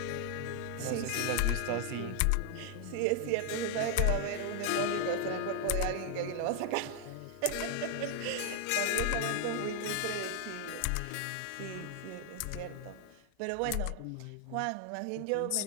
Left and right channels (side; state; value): both; different; correlation 0.00